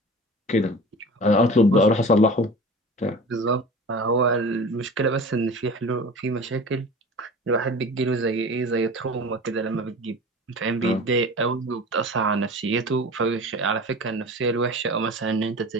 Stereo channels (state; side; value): normal; both; correlation 0.37